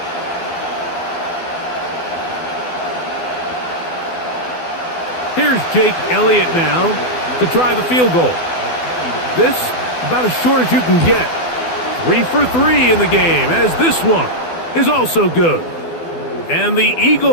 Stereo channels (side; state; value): right; late; 12 ms